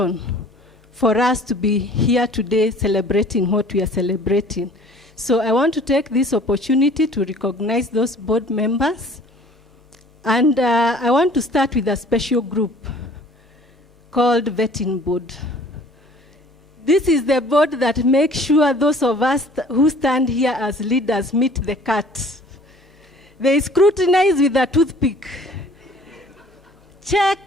for us to be here today celebrating what we are celebrating. So I want to take this opportunity to recognize those board members. And I want to start with a special group called Vetting Board. This is the board that makes sure those of us who stand here as leaders meet the cut. They scrutinize with a toothpick.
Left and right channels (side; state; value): both; normal; correlation 0.51